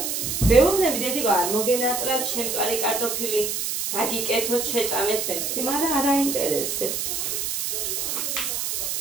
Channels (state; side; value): noise; right; hiss, 2 dB below the sound